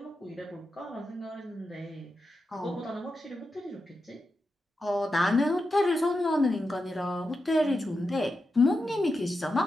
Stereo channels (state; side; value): normal; both; correlation 0.89